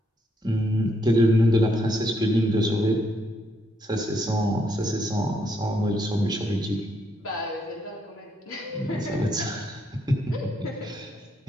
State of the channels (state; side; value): normal; both; correlation 0.75